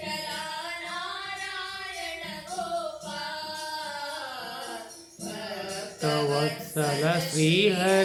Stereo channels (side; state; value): both; identical; correlation 1.00